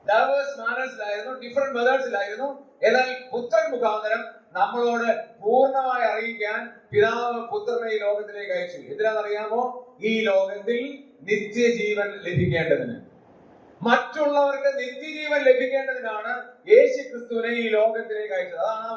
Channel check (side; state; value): both; identical; correlation 1.00